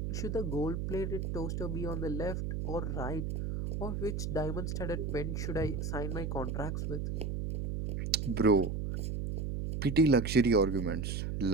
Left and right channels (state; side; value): noise; right; hum, 2 dB below the sound